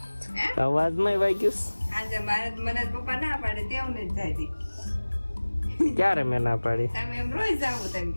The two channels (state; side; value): inverted; both; correlation -1.00